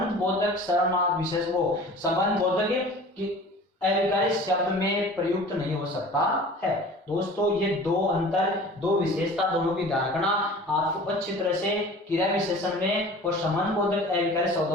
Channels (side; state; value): both; normal; correlation 0.42